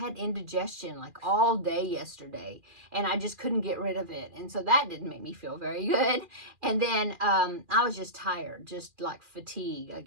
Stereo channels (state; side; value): late; left; 2.4 ms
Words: indigestion like all day yesterday, and I just couldn't get rid of it. And so that didn't make me feel very good. And then I was just tired, just like fatigue, I